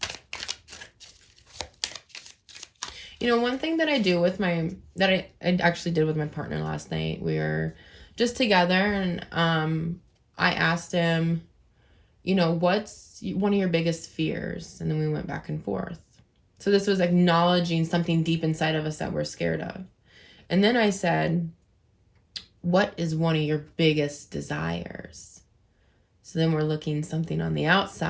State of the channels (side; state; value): both; identical; correlation 1.00